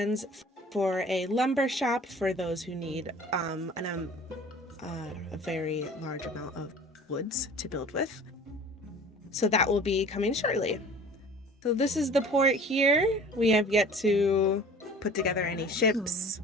for a lumber shop for those who need a very large amount of woods to build with. So that will be coming shortly. So this is the port here. We have yet to put together any ships,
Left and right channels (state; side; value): normal; both; correlation 0.44